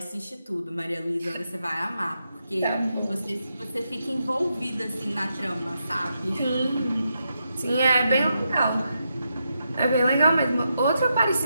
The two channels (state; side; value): inverted; both; correlation -0.84